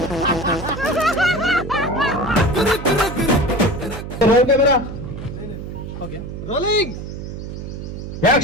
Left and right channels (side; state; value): right; noise; hum, 8 dB below the sound